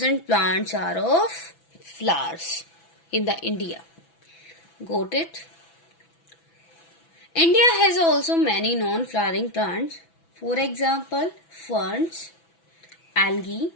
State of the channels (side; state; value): right; late; 6.0 ms